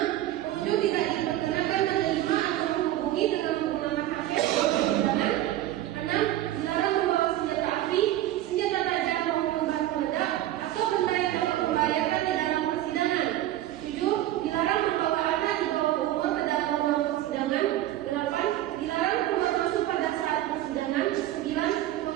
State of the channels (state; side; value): quieter; left; 13.9 dB